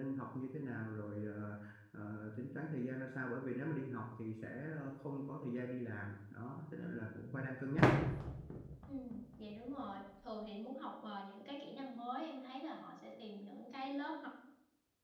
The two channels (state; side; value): identical; both; correlation 1.00